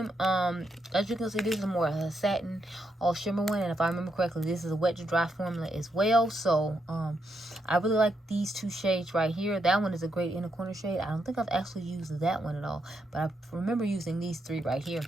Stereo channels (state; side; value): normal; both; correlation 0.80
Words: As you can see, this is more a satin all shimmer one, and if I remember correctly, this is a wet to dry formula as well. So I really like these 2 shades right here. That one is a great inner corner shade. I don't think I've actually used that one at all, but I remember using these 3 right here